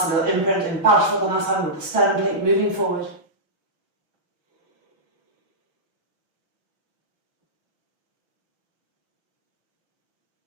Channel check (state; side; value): late; left; 5.9 ms